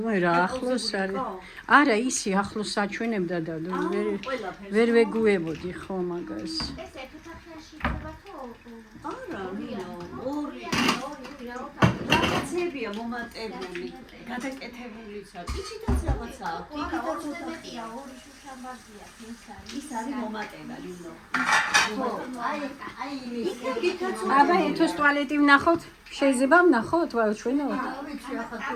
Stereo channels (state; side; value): identical; both; correlation 1.00